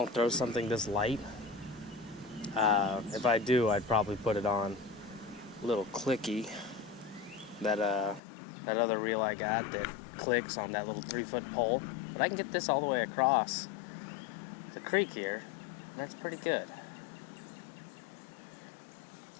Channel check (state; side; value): drops out; right; at 8.2 s